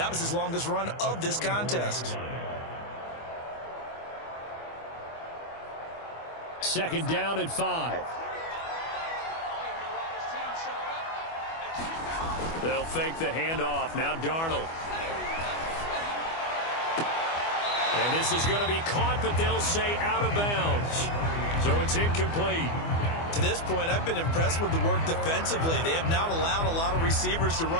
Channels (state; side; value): late; right; 24 ms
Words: was his longest run of this contest. 2nd down and 5. They'll fake the handoff. Now Darnold. And this is going to be caught, but they'll say out of bounds. So it's incomplete. To this point, I've been impressed with the work defensively. They have not allowed a lot of receivers to